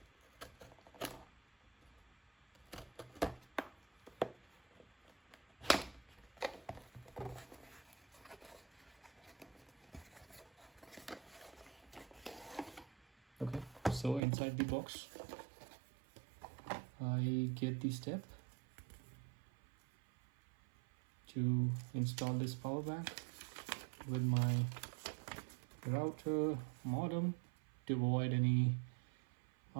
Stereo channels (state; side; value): drops out; left; at 14.2 s